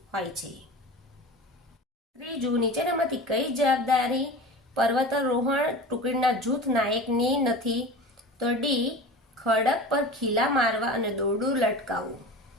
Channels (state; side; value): normal; both; correlation 0.34